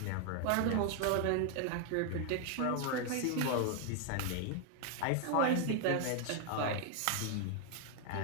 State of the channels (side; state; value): both; different; correlation 0.00